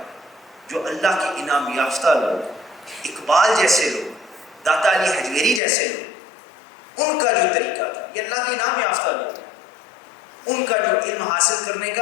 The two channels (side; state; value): right; drops out; at 5.6 s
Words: جو اللہ کے انعام یافتہ لوگ، اقبال جیسے لوگ، داتا علی حجویری جیسے لوگ، ان کا جو طریقہ تھا، یہ اللہ کے انعام یافتہ لوگ ہیں، ان کا جو علم حاصل کرنے